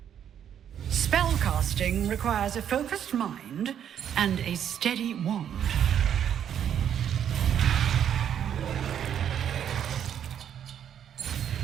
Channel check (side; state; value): left; quieter; 9.3 dB